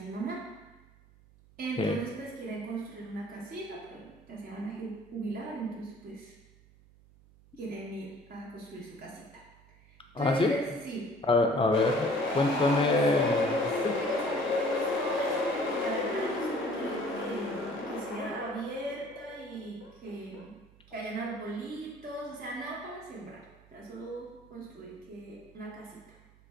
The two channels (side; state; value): right; noise; hum, 26 dB below the sound